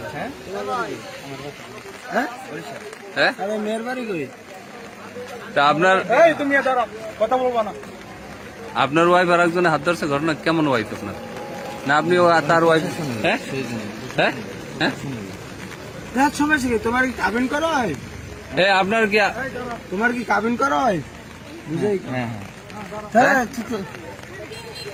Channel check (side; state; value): both; identical; correlation 1.00